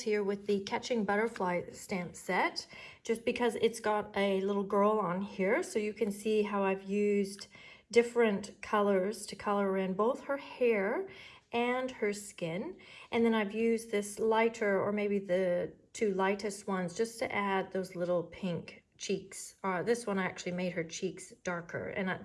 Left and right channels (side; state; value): both; identical; correlation 1.00